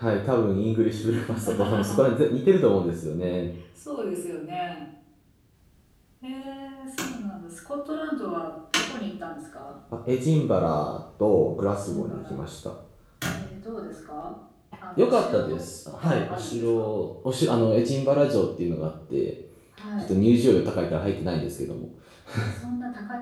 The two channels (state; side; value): identical; both; correlation 1.00